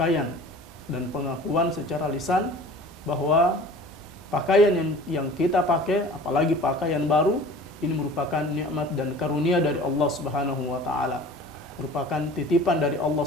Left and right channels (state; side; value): normal; both; correlation 0.44